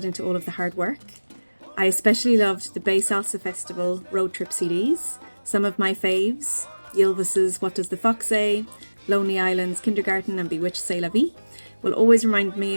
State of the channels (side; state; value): both; inverted; correlation -1.00